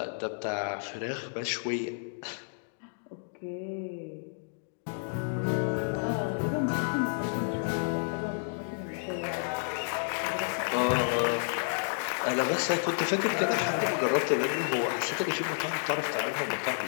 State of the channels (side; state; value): right; silent; digital silence